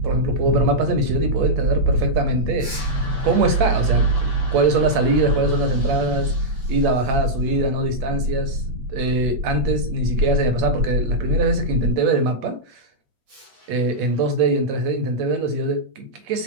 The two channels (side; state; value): left; late; 8.6 ms